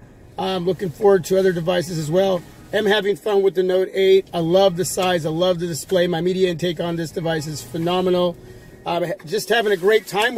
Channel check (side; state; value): both; identical; correlation 1.00